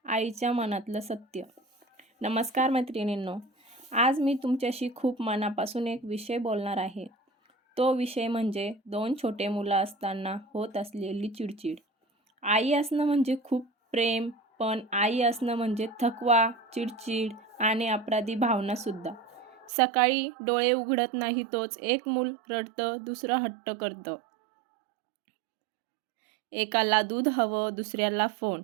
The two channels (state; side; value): drops out; left; at 19.7 s